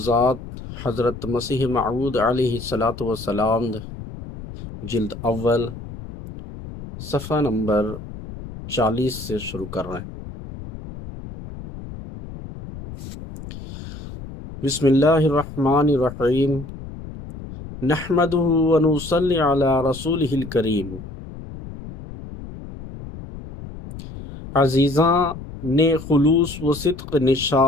حضرت مسیح موعود علیہ الصلاۃ والسلام، جلد اول، صفحہ نمبر 40 سے شروع کر رہے ہیں۔ بسم اللہ الرحمن الرحیم، نحمدہ ونصلی علی رسولہ الکریم۔ عزیزاں نے خلوص و صدق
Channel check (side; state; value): left; noise; rumble, 12 dB below the sound